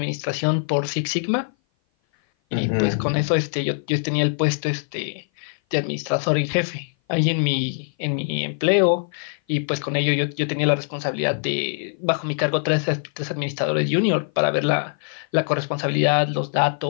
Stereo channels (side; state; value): right; silent; 56 dB below the other